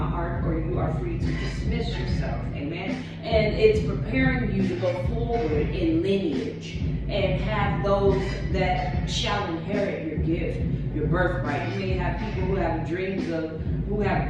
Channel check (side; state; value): both; identical; correlation 1.00